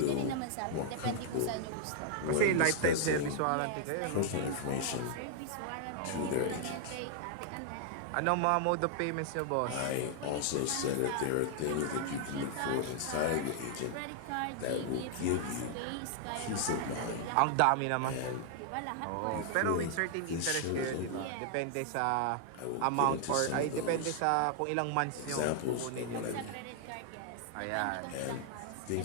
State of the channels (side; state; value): both; different; correlation 0.00